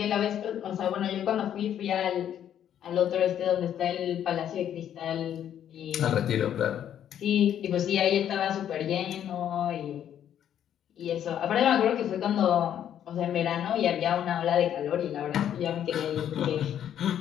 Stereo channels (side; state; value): right; quieter; 10.0 dB